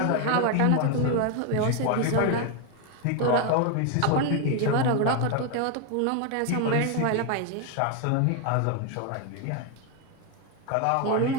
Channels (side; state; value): both; different; correlation 0.01